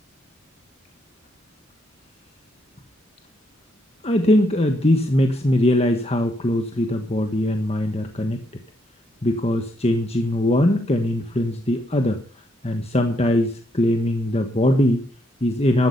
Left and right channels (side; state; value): both; normal; correlation 0.76